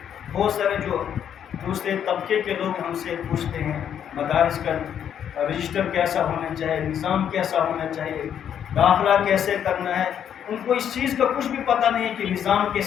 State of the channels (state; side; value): quieter; right; 9.1 dB